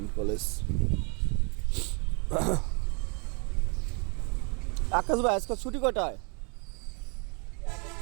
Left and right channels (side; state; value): left; quieter; 34.5 dB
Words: College. Akash ভাই, আজকে ছুটি কটায়?